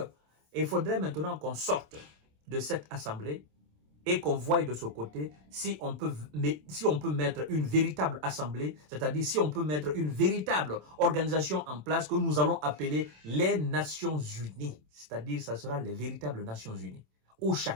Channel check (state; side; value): late; left; 27 ms